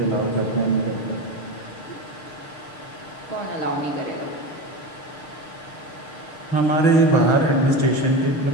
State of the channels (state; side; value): late; right; 6.5 ms